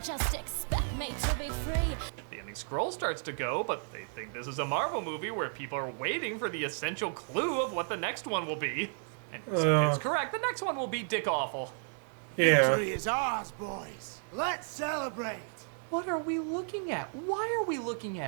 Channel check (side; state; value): left; silent; 56 dB below the other